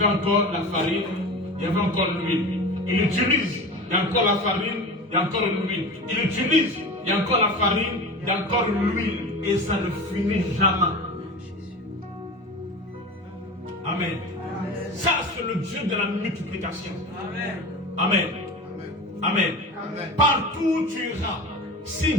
encore la farine, il y avait encore l'huile. Il utilise, il y a encore la farine, il y a encore l'huile. Il utilise, il y a encore la farine, il y a encore l'huile. Et ça ne finit jamais. Amen. Ça, c'est le Dieu de la multiplication. Amen. Amen. Amen. Amen. Partout où tu iras, si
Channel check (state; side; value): normal; both; correlation 0.31